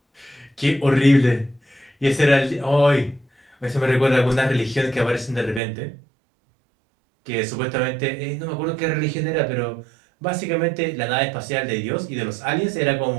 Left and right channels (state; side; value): drops out; left; at 5.6 s